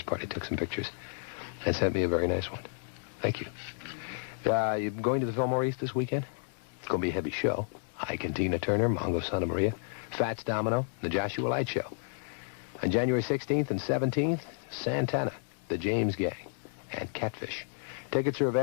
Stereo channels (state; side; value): silent; right; digital silence